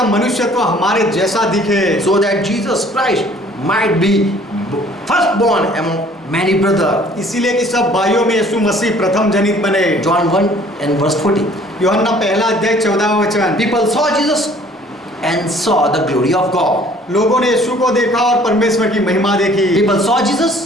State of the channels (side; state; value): both; normal; correlation 0.55